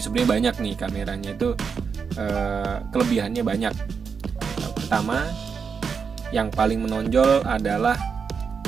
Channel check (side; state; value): left; quieter; 6.0 dB